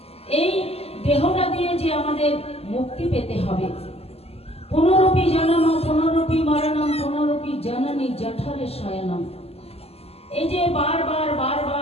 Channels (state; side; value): late; right; 0.29 ms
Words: এই দেহটা দিয়ে যে আমাদের মুক্তি পেতে হবে, পুনরপি জনম পুনরপি মরণম পুনরপি জননী জঠরে শয়নম, এই যে বারবার